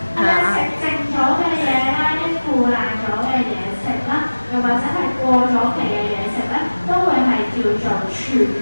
係咪食剩咗嘅嘢啦，啲腐爛咗嘅嘢食啦，又或者係過咗期嘅嘢食咧，都會係叫做廚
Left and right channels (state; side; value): inverted; both; correlation -1.00